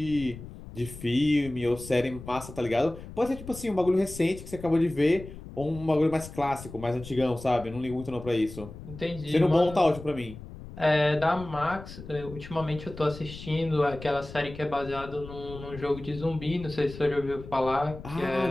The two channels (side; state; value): left; noise; rumble, 14 dB below the sound